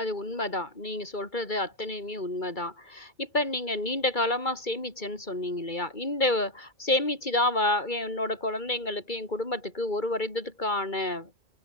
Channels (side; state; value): right; late; 2.3 ms